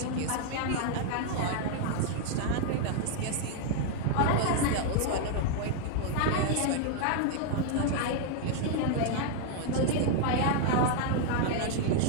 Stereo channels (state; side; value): different; both; correlation 0.00